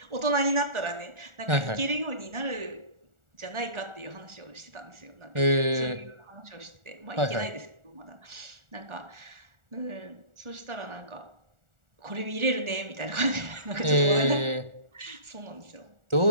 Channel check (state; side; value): late; left; 1.4 ms